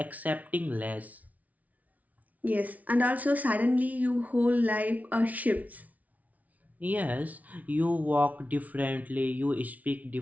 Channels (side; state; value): left; late; 0.072 ms